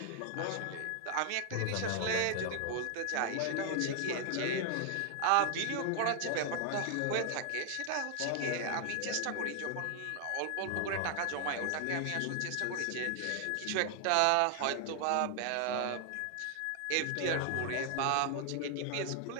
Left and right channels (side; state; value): both; different; correlation 0.00